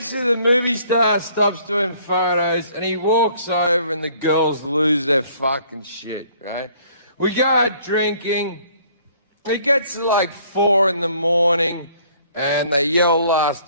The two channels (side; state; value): both; inverted; correlation -0.59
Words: the movie star stops doing photos, and he walks over, and the girls lose their fucking shit, right? We go out drinking. It gets to like 4 in the morning, and they yell